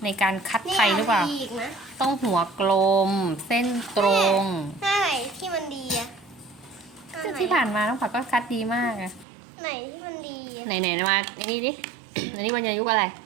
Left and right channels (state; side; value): drops out; left; at 9.2 s